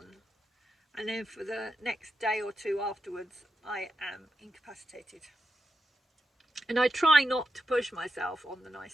and then for the next day or two afterwards I am incapacitated. And I try not to push myself on the nice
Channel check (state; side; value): normal; both; correlation 0.85